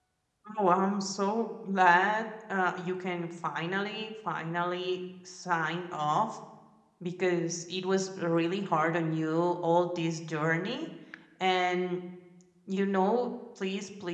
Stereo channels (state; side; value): identical; both; correlation 1.00